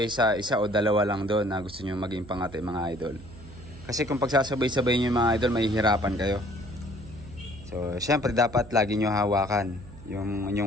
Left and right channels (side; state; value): right; noise; hum, 17 dB below the sound